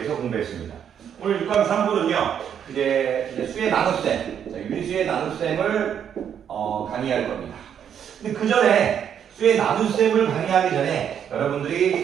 공부했습니다. 오늘 6강 3부는요, 이제 수의 나눗셈, 유리수의 나눗셈을 강의할 겁니다. 근데 그 전에 수의 나눗셈을 강의하기 전에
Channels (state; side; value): quieter; left; 8.6 dB